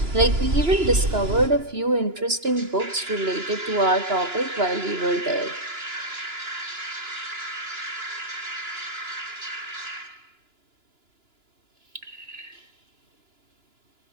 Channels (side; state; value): left; late; 2.9 ms